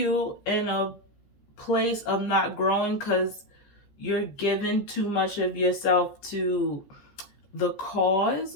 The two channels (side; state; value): right; late; 14 ms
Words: in a place of not growing because you're giving too much of yourself to the cause,